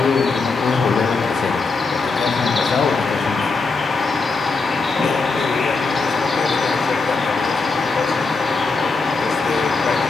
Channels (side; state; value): right; quieter; 4.2 dB